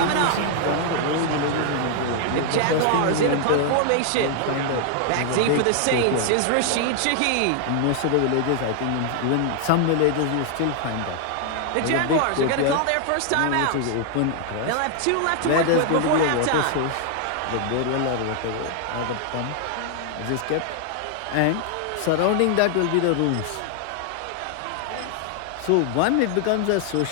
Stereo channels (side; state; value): both; different; correlation 0.00